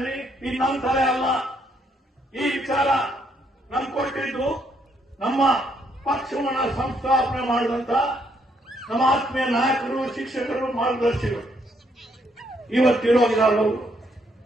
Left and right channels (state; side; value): normal; both; correlation 0.72